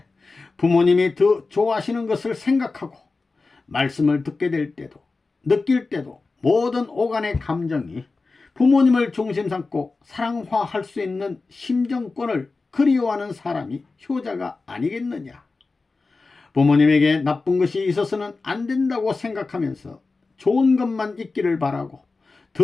부모님이 더 좋아하시는 것을 생각하고 말씀을 듣게 될 때도 느낄 때도 모든 오간의 감정이 부모님을 중심 삼고 사랑화할 수 있는 심정권을 그리워하는 사람이 효자가 아니겠느냐. 부모님에게 나쁜 것이 있어서는 안 된다고 생각하면서 좋은 것만 있기를 바라고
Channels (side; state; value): right; quieter; 3.8 dB